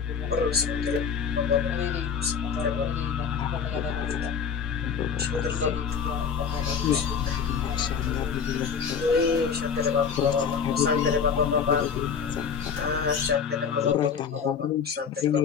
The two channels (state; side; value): quieter; right; 6.6 dB